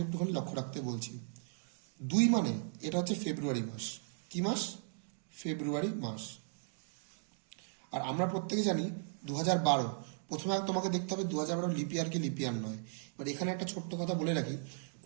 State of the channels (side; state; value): left; silent; digital silence